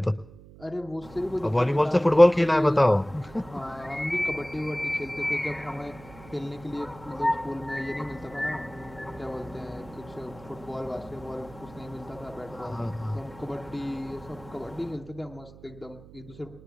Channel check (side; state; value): right; noise; hum, 19 dB below the sound